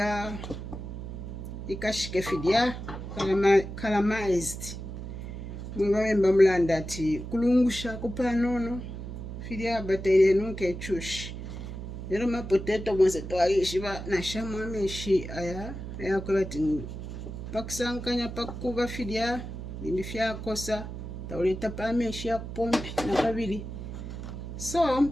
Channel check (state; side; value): noise; right; hum, 8 dB below the sound